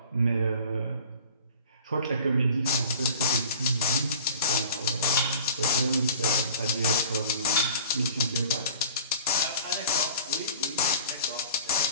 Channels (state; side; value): inverted; both; correlation -0.45